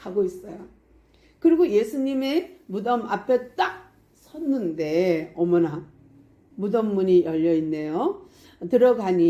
있어요. 그리고 예수님의 무덤 앞에 딱 섰는데 어머나 무덤 문이 열려 있네요.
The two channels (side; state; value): both; identical; correlation 1.00